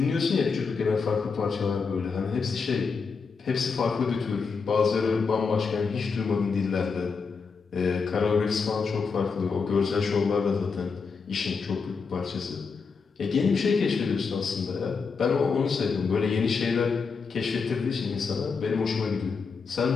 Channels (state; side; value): quieter; right; 5.2 dB